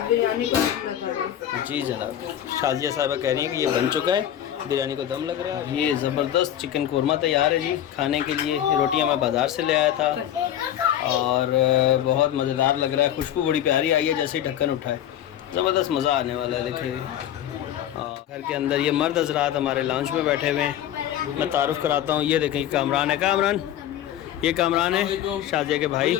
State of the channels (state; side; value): quieter; right; 11.2 dB